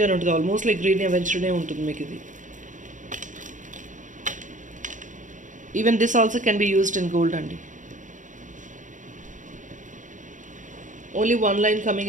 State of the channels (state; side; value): late; left; 0.37 ms